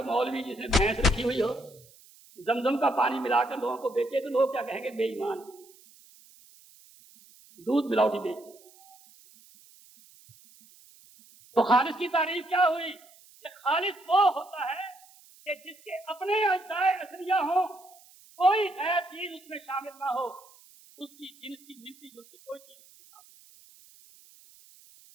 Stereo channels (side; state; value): right; noise; hiss, 25 dB below the sound